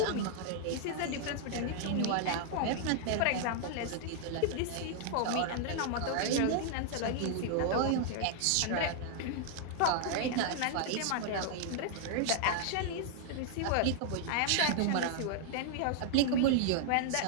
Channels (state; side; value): different; both; correlation -0.01